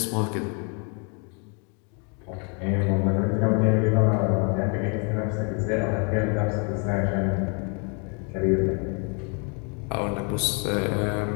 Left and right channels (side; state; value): right; quieter; 36.3 dB